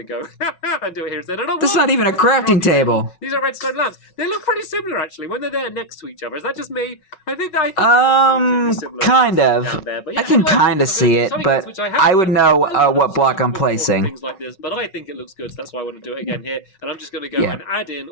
to go and do it here instead. That's not even a crafting table. These are redstone lamps. They look pretty similar, actually, when they're there next to each other. Is that just me? I think kind of. There. But yeah, I can kind of see it, but I would know what block I'm placing. Things like this, but I think it looks good, so that's why I want to do it again here. And I'm just going to go and add in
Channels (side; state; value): right; late; 5.4 ms